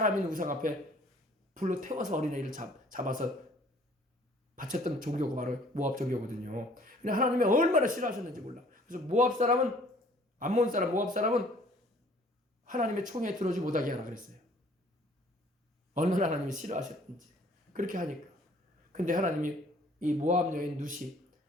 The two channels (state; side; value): normal; both; correlation 0.56